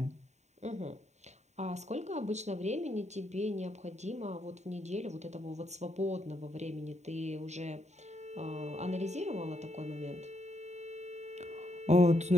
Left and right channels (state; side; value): late; left; 0.33 ms